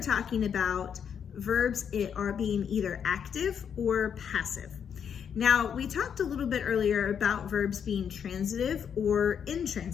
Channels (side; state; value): right; quieter; 7.8 dB